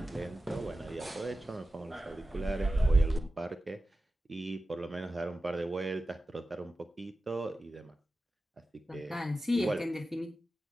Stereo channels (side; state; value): both; normal; correlation 0.93